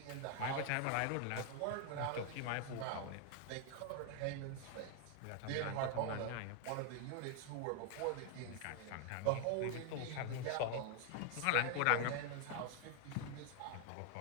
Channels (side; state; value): both; different; correlation 0.00